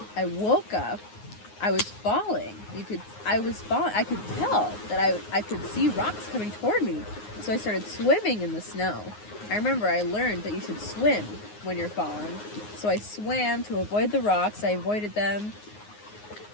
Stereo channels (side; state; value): right; late; 9.6 ms